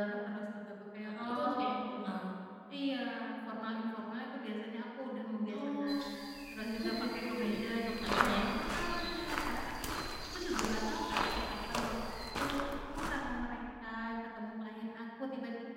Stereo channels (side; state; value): both; identical; correlation 1.00